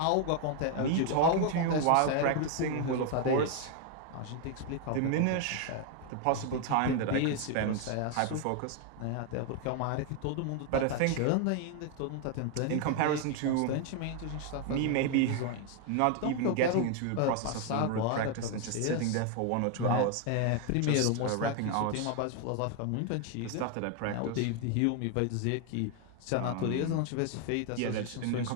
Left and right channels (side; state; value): both; different; correlation 0.01